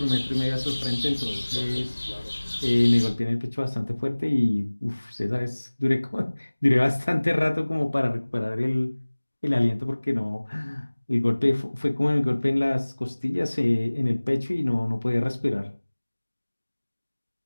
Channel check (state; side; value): inverted; both; correlation -1.00